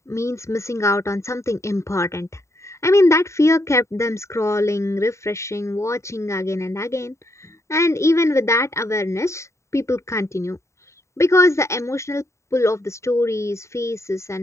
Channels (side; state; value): right; late; 0.14 ms